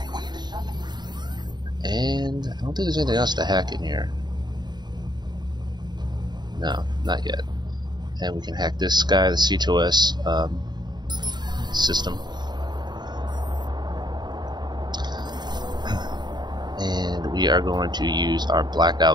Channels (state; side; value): late; left; 0.21 ms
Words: And I don't think there's anything else to hack in here. No, not yet. And we can hack this guy, the C2S system. And we are going to use our